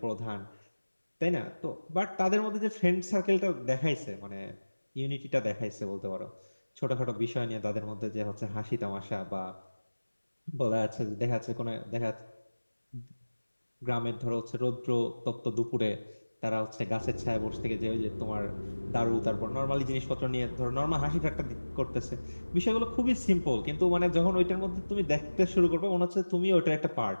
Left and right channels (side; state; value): both; inverted; correlation -1.00